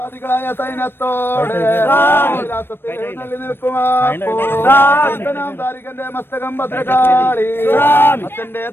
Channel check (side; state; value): right; late; 0.10 ms